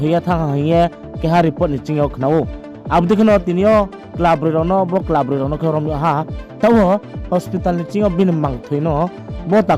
thang haye keha report ni chingyo khnao abdi khno tinio club rono bo club rono ke rom ha tawo hospital ni chingo bin mang thuino bo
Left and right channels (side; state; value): both; identical; correlation 1.00